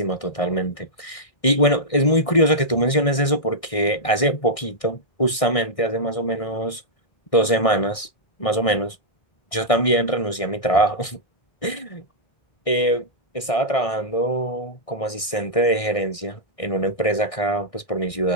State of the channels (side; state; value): right; late; 1.6 ms